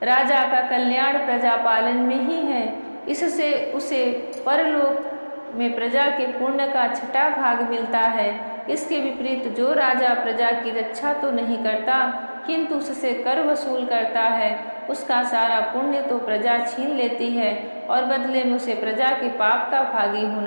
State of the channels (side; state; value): both; inverted; correlation -1.00